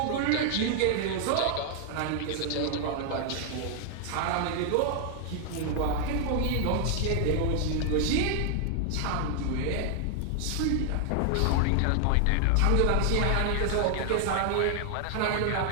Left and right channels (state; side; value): different; both; correlation 0.00